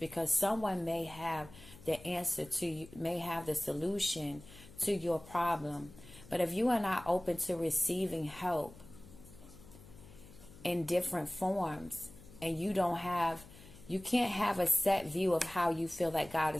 someone may have the answer to you, may have the solution to your problem. But if you are not open to receiving help, in different forms, and you can't have a set view of how you feel that God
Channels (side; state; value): left; noise; hum, 20 dB below the sound